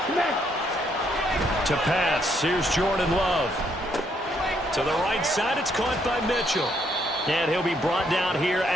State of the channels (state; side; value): normal; both; correlation 0.72